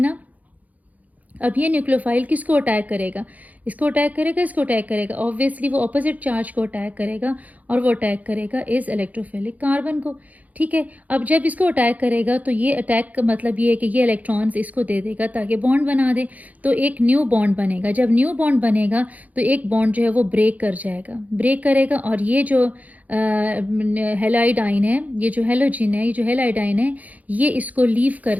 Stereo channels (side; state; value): left; late; 0.076 ms